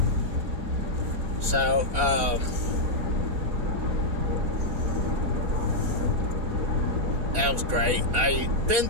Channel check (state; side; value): late; left; 4.3 ms